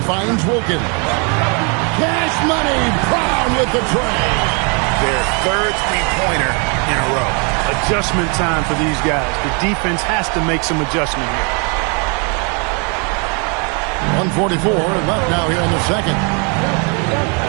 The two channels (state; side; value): quieter; left; 35.5 dB